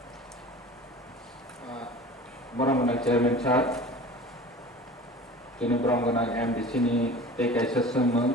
Borang Chairman Chart, Juni Borang MDC ni take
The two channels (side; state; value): both; normal; correlation 0.39